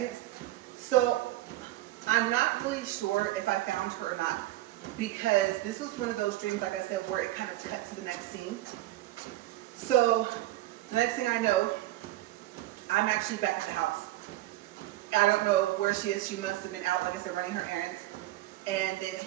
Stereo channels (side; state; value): left; quieter; 16.1 dB